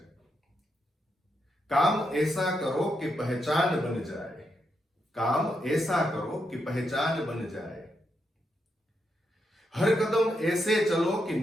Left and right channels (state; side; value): normal; both; correlation 0.82